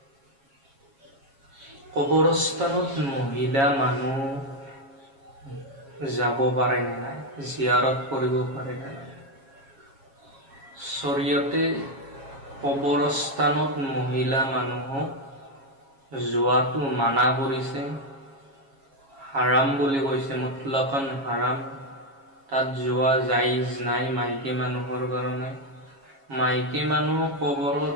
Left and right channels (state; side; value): late; left; 7.3 ms